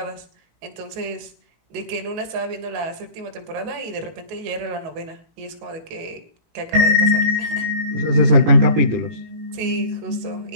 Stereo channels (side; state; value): left; late; 19 ms